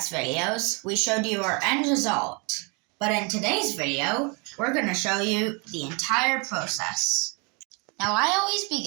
videos, we showed you our end result. But in today's video, we're going to show you the entire process. Now I always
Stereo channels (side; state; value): left; quieter; 32.3 dB